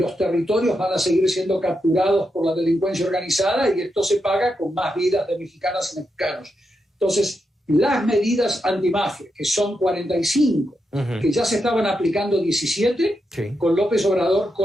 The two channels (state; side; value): normal; both; correlation 0.85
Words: territorios van a seguir siendo capturados por la delincuencia organizada y esto se paga con más vidas de mexicanas y mexicanos. Entonces, las medidas antimafia, que son 45, que ya se estaban aplicando 17, con López Obrador